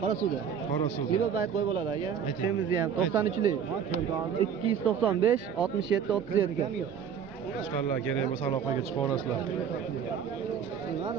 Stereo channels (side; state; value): left; quieter; 7.8 dB